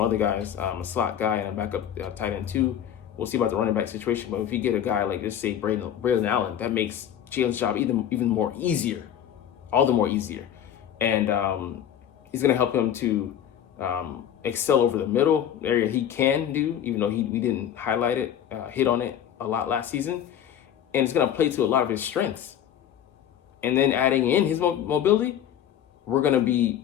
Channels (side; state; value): right; quieter; 9.9 dB